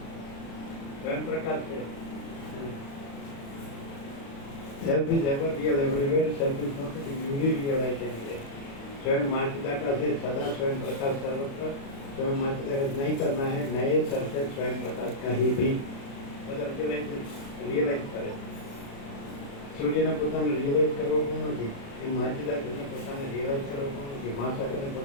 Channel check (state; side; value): late; right; 36 ms